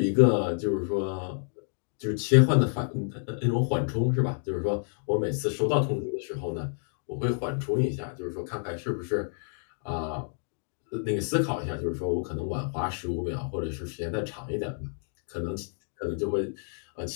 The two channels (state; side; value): silent; right; digital silence